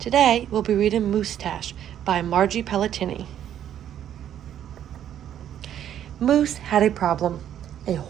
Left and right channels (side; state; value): left; quieter; 10.4 dB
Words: we'll be reading Moosetache by Margie Pelletini. Moose had a problem, a